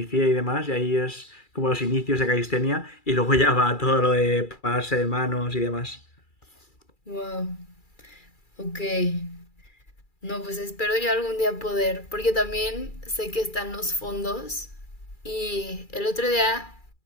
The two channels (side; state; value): right; late; 2.3 ms